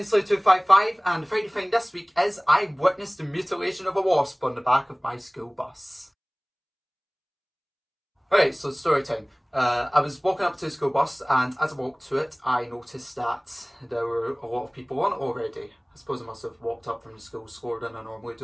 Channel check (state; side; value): identical; both; correlation 1.00